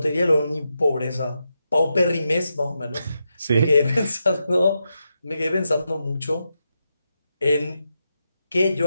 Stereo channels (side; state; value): both; inverted; correlation -0.86